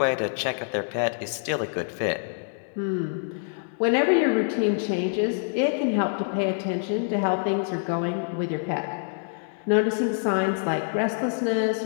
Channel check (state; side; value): silent; right; digital silence